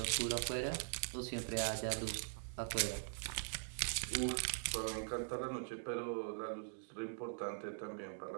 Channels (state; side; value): silent; left; digital silence